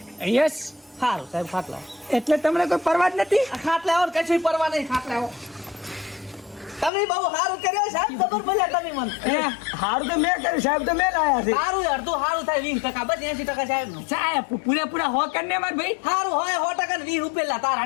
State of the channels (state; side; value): drops out; right; at 6.9 s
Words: યસ. સારું સાહેબ ખાટલા એટલે તમને કોઈ પરવા જ નથી. ખાટલા આવો કશું પરવા નહીં ખાટલા આવો તમે બહુ સારું કર્યો સાહેબ ખબર પડ્યા તમે મને હારું તો મેં કર્યું સાહેબ તો મેં લાયા છે. સારું અડધું સારું થાય 20% બસ 80% સાહેબ નું સાહેબ પૂરેપૂરા હો કરીને માર ભાઈ. સારું હોય 100% ને 20 રૂપિયા તારા